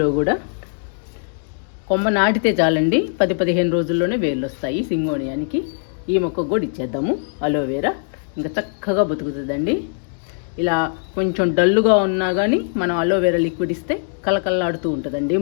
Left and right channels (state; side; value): silent; right; digital silence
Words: కూడా కొమ్మ నాటితే చాలండి, 10-15 రోజుల్లోనే వేర్లు వస్తాయి సింగోనియానికి. ఈ మొక్కకు కూడా ఇచ్చేద్దాము అలోవెరా, ఇంకా చక్కగా బతుకుతుందండి. ఇలా కొంచెం డల్లుగా ఉన్నా కానీ మనం అలోవెరా లిక్విడ్ ఇస్తే కలకల్లాడుతూ ఉంటుందండి